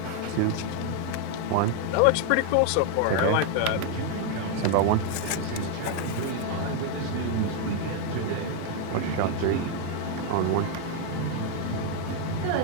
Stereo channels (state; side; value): different; both; correlation 0.00